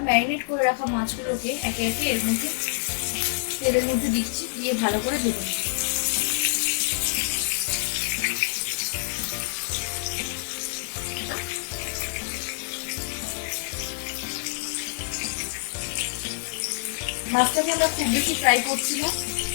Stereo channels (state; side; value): silent; right; digital silence